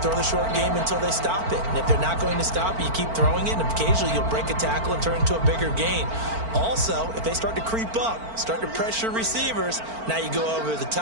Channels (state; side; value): late; left; 4.4 ms